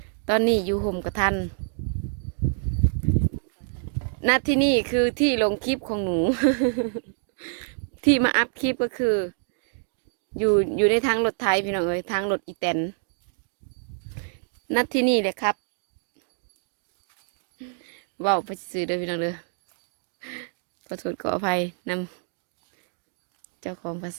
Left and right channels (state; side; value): silent; left; 61 dB below the other